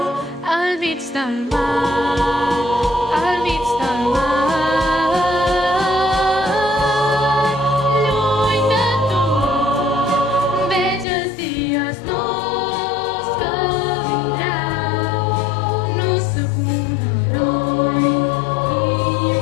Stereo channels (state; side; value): drops out; right; at 11.1 s